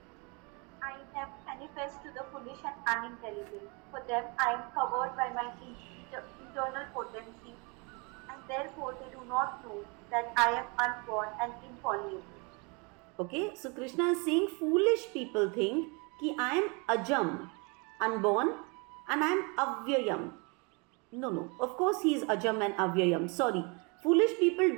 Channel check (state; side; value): quieter; left; 31.3 dB